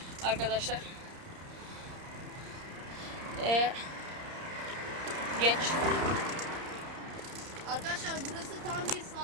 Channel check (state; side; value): late; left; 30 ms